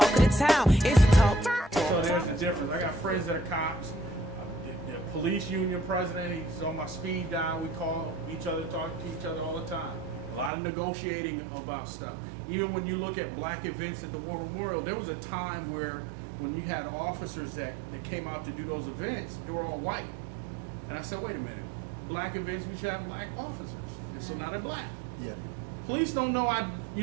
of the town. It's the talk. So there's the difference. I got friends that are cops. The police union president, he's on my speed dial. We call each other, talk to each other all the time. A lot of negotiating about stuff. Even when you look at black events at the War Memorial, there was a time where when you had officers that came out to do those events, they were all white. And I said, wait a minute. Black events, we should have black officers. And so now they're black. Yeah. Police don't know I,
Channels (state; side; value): drops out; left; at 10.5 s